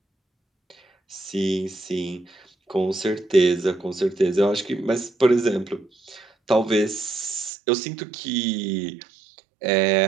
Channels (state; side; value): drops out; left; at 7.5 s